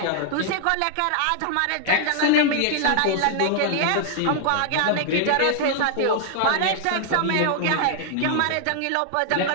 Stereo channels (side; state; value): both; different; correlation 0.00